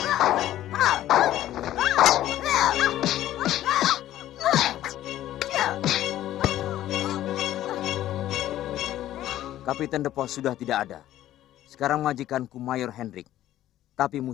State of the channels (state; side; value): quieter; right; 13.3 dB